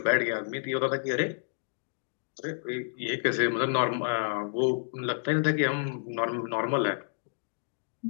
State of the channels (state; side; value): silent; right; digital silence